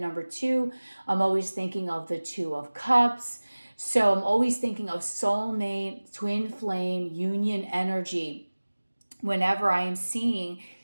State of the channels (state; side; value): inverted; both; correlation -1.00